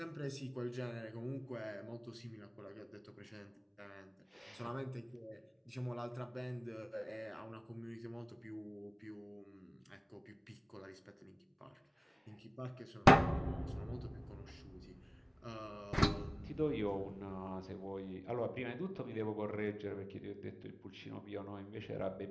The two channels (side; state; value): both; identical; correlation 1.00